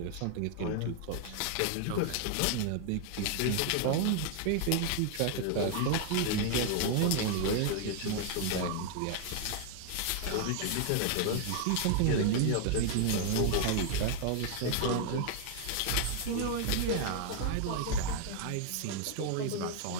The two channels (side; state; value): both; different; correlation 0.00